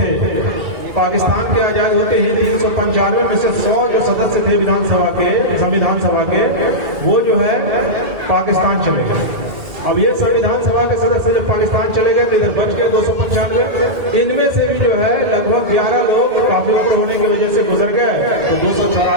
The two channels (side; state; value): left; late; 2.3 ms